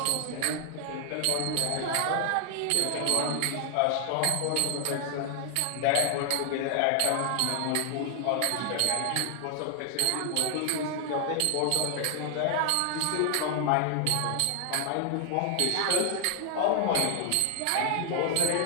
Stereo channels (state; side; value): different; both; correlation 0.00